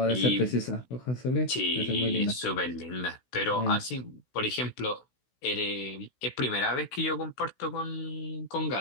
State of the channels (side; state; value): right; late; 16 ms